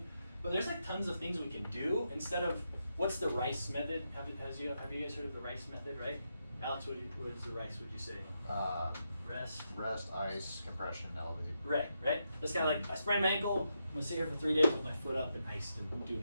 But there's like tons of things we can do instead of, what's the RICE method? Have you guys heard of the RICE method, right? Alex, what is the RICE, would you say? Rest, ice, compression, elevate. Right? That's kind of like, I sprained my ankle, I'm gonna sit here for 3 days with my foot up and iced and do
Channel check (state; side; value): inverted; both; correlation -0.83